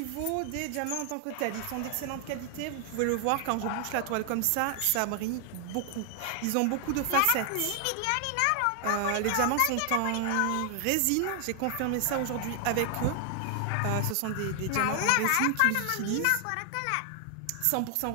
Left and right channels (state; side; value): different; both; correlation 0.00